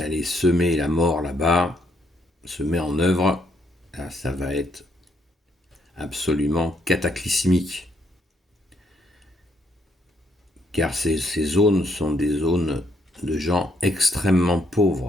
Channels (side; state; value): both; normal; correlation 0.72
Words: semer la mort là-bas se met en œuvre, là, ça va être absolument cataclysmique. Car ces zones sont des zones de gens extrêmement